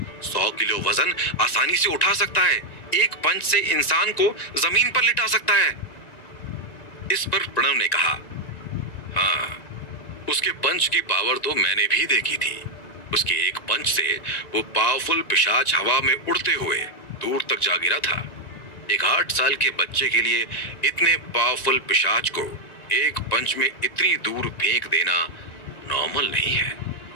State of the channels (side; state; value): right; late; 1.9 ms